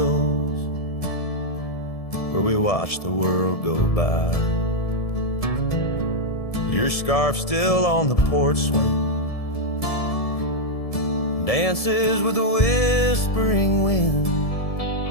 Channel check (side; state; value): right; late; 1.7 ms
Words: where we watch the world go by. Your scarf still on the porch swing, dances with the whispering wind,